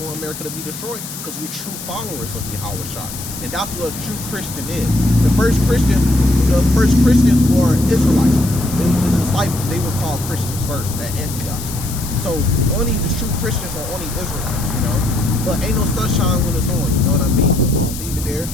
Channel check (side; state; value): left; noise; hiss, 10 dB below the sound